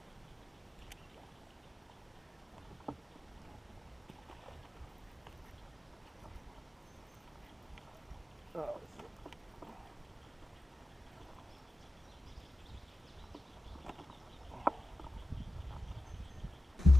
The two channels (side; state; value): both; normal; correlation 0.94